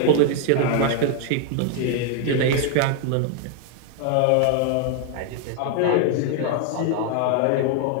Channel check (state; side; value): different; both; correlation 0.00